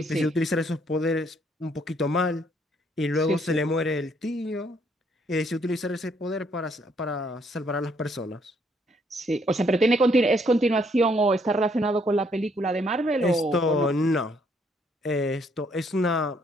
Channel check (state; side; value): normal; both; correlation 0.68